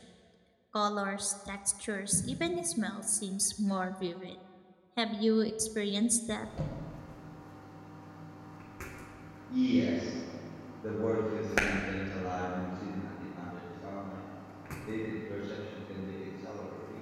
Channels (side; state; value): both; identical; correlation 1.00